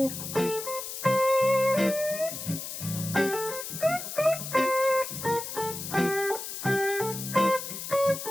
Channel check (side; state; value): left; noise; hiss, 7 dB below the sound